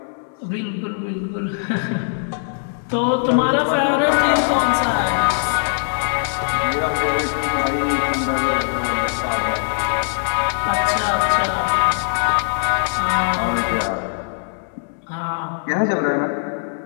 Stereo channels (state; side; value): silent; right; digital silence